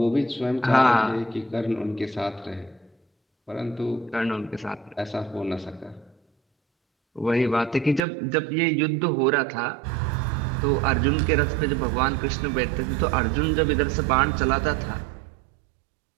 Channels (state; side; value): drops out; left; at 8.0 s